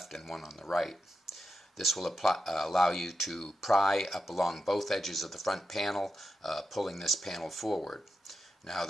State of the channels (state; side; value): normal; both; correlation 0.88